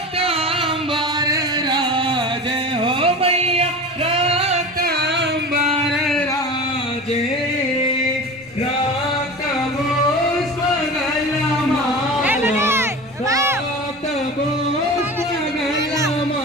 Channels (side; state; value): both; normal; correlation 0.32